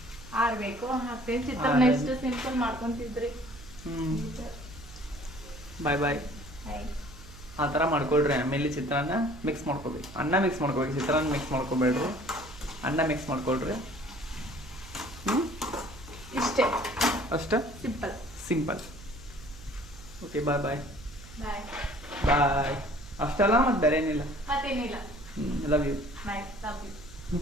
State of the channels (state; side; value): noise; right; hum, 18 dB below the sound